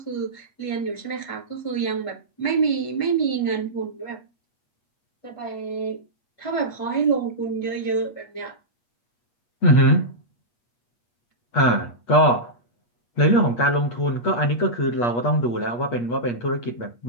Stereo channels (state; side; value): late; right; 8.4 ms